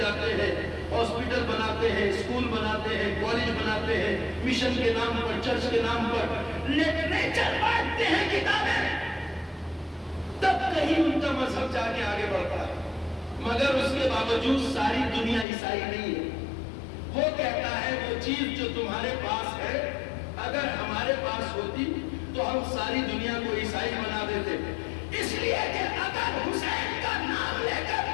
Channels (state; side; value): drops out; right; at 15.5 s